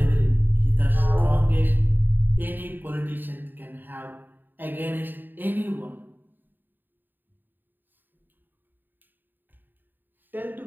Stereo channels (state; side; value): late; left; 0.091 ms